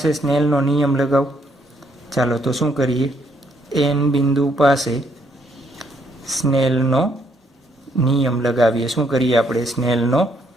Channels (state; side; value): normal; both; correlation 0.71